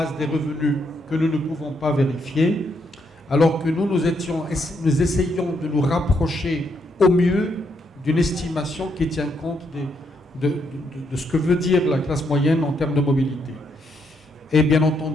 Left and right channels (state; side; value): normal; both; correlation 0.76